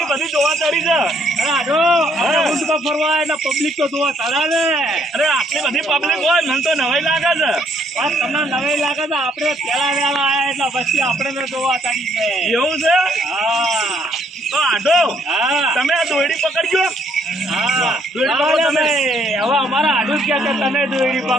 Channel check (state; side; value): normal; both; correlation 0.68